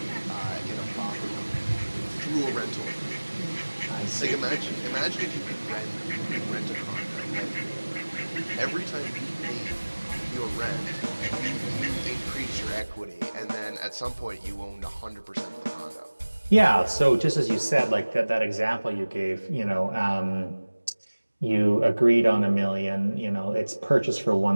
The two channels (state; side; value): inverted; both; correlation -1.00